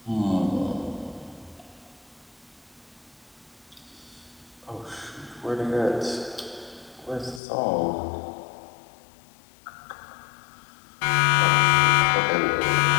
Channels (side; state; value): right; drops out; at 7.4 s